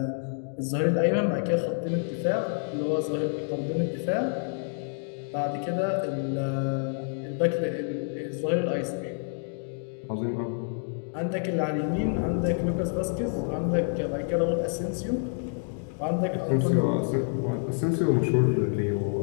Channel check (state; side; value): silent; right; 59 dB below the other